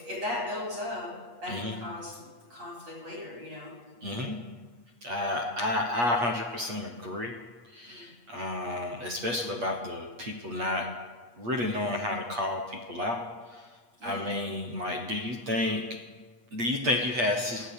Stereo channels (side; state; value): left; late; 8.4 ms